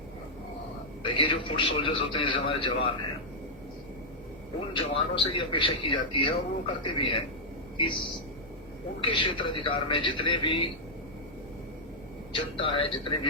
ये जो फुट सोल्जर्स होते हैं, जैसे हमारे जवान हैं, उन जवानों से ये अपेक्षा की जाती है और वो करते भी हैं कि उनके क्षेत्र अधिकार में जितने भी जनता है, जितने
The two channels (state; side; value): normal; both; correlation -0.05